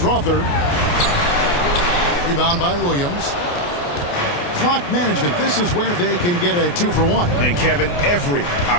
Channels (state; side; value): late; right; 28 ms